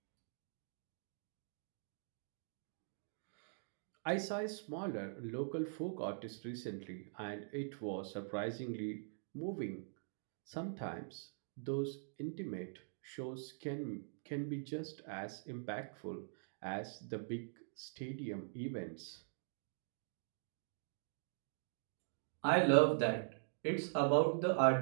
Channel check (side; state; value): left; silent; digital silence